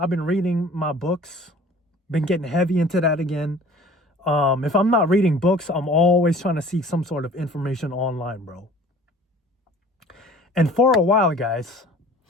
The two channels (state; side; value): normal; both; correlation 0.48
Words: reading my books, been getting heavy into that again. If I'm not reading books, I'm always trying to seek some sort of information online, bro. And for a while, guys,